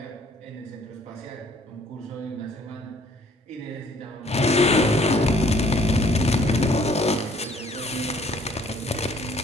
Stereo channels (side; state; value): both; normal; correlation 0.59